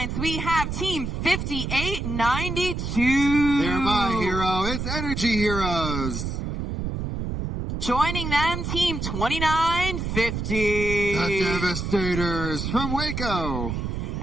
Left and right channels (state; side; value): noise; right; rumble, 3 dB below the sound